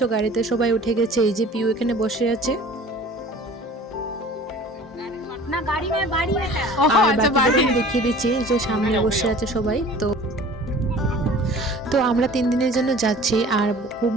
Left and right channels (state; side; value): normal; both; correlation 0.46